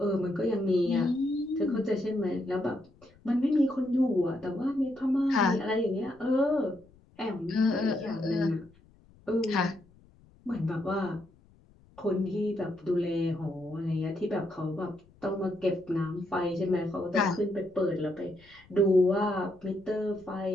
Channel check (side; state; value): left; noise; rumble, 28 dB below the sound